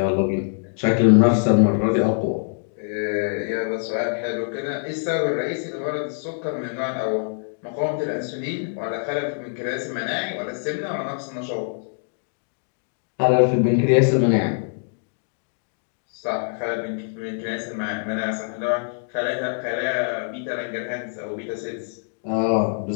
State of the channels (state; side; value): silent; right; digital silence